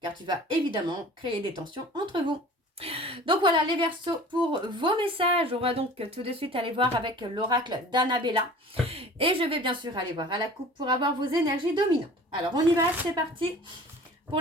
tu vas évidemment créer des tensions entre vous. Donc voilà les Verseaux pour vos messages. On va donc tout de suite aller voir avec l'oracle d'Annabella. Et je vais bien sûr aller voir à la coupe pour avoir vos énergies dominantes. Alors on y va, c'est parti pour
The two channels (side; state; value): both; normal; correlation 0.44